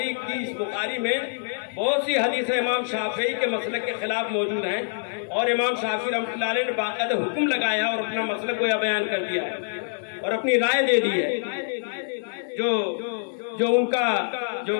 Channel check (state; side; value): silent; right; 61 dB below the other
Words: کی اس بخاری میں بہت سی حدیثیں امام شافعی کے مسلک کے خلاف موجود ہیں اور امام شافعی رحمۃ اللہ علیہ نے باقاعدہ حکم لگایا اور اپنا مسلک کو بیان کر دیا ہے اور اپنی رائے دے دی ہے۔ جو ان کا جو